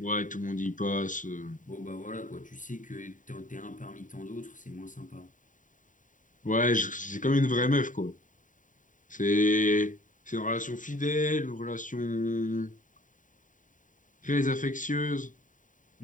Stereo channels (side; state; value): right; late; 0.38 ms